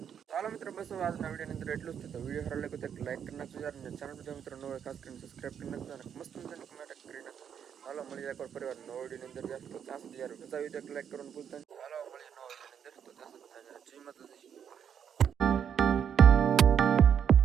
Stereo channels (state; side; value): quieter; left; 8.2 dB